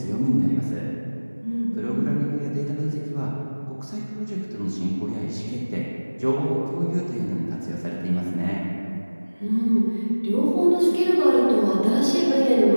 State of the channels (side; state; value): both; inverted; correlation -1.00